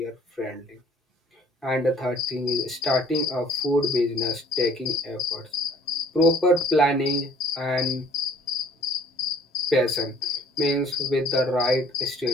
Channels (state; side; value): normal; both; correlation 0.54